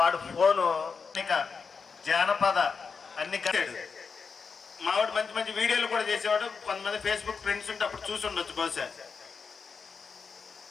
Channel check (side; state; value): right; quieter; 5.4 dB